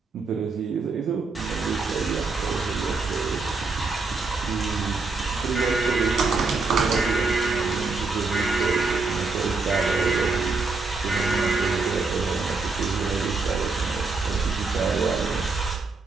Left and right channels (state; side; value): quieter; left; 4.0 dB